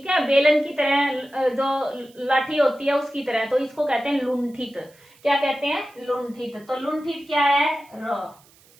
है, बेलन की तरह, जो लाठी होती है उसकी तरह, तो इसको कहते हैं लुंठित। क्या कहते हैं? लुंठित। तो लुंठित क्या है? र।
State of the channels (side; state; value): right; noise; hiss, 29 dB below the sound